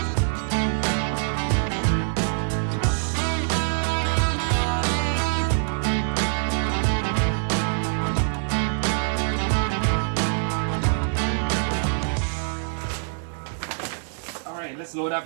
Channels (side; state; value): left; silent; digital silence